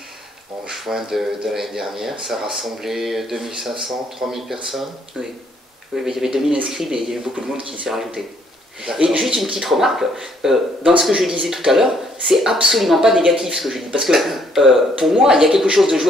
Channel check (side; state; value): both; normal; correlation 0.67